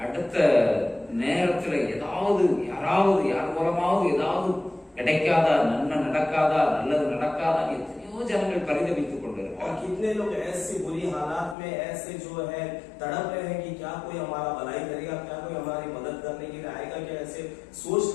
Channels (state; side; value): drops out; right; at 11.6 s